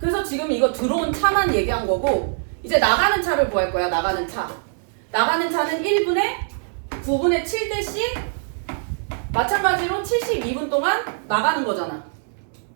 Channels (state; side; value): silent; left; digital silence